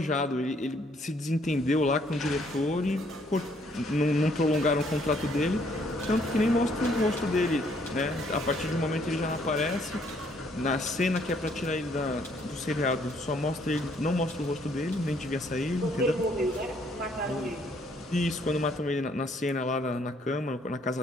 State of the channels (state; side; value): normal; both; correlation 0.66